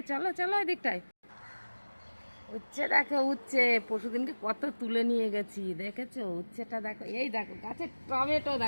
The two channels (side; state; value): both; inverted; correlation -1.00